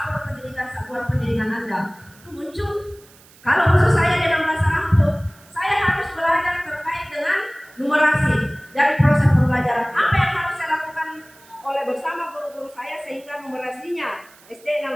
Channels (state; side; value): noise; right; hiss, 26 dB below the sound